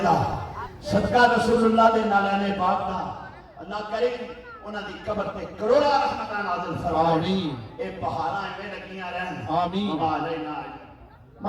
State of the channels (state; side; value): identical; both; correlation 1.00